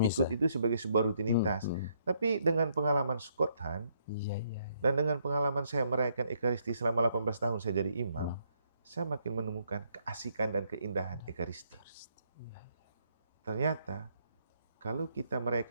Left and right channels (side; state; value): both; inverted; correlation -0.72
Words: ikut itu sebagai sebuah rutinitas. Tapi dengan pengalaman Scott Hahn, dan dengan pengalaman saya merayakan Ekaristi selama 18 tahun saya jadi imam, saya makin menemukan keasikan dan keindahan Ekaristi. Ternyata, kalau kita